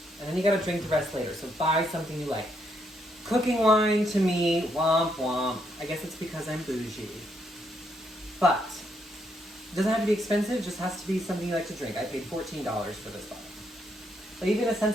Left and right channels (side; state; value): both; normal; correlation 0.75